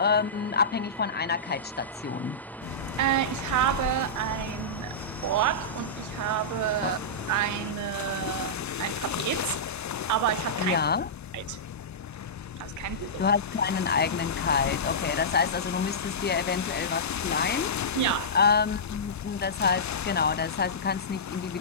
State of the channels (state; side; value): normal; both; correlation -0.16